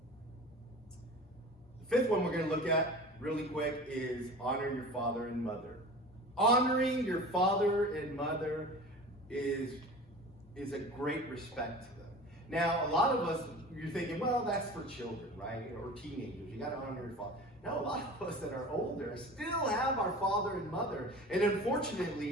The fifth one we're going to look at really quick is honor your father and mother. Honoring your father and mother is a great respect to them. Now, a lot of us, you're thinking, well, that's for children, right? Or teenagers. You got to honor your father. No, a lot of us that are older still have our father and mother. And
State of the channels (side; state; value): both; normal; correlation 0.38